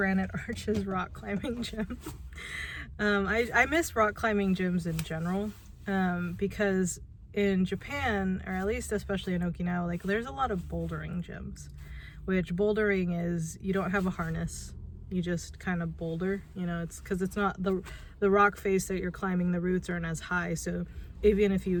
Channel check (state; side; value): identical; both; correlation 1.00